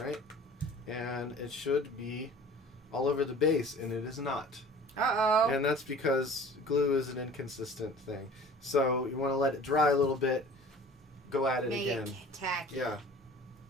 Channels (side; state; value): both; normal; correlation 0.45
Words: And it should be all over the base, and it is not. Uh-oh. And that's because glue is an inconsistent thing. So you want to let it dry a little bit, go at it again. Make it tacky.